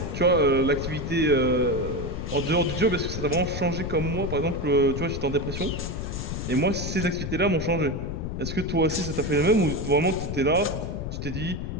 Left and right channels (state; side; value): noise; left; rumble, 5 dB below the sound